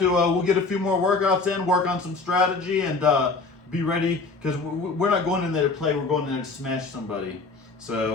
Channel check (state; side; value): quieter; right; 4.0 dB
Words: We'll get a few more workouts in, work on some strategy, and be ready because we're not going in there to play. We're going in there to smash somebody.